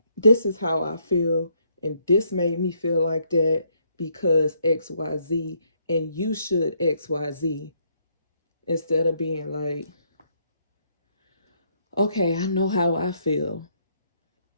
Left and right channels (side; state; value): both; inverted; correlation -0.71